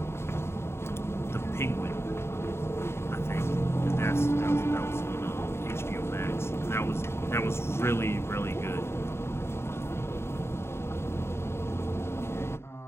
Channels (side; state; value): right; late; 0.12 ms